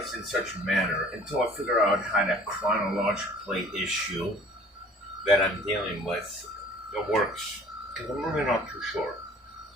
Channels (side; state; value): both; normal; correlation 0.51